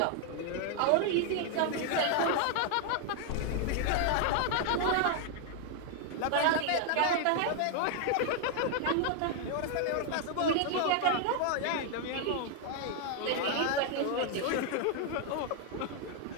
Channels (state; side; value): different; both; correlation 0.00